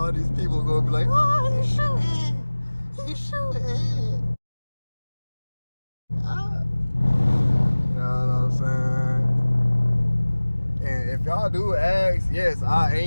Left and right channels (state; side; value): inverted; both; correlation -1.00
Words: these people gonna be like, oh, he's shooting. He's shooting. Ah. You know what I'm saying? And if y'all do ask, yes,